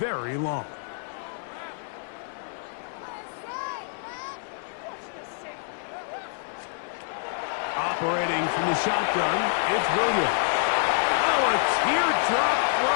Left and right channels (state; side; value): silent; right; 60 dB below the other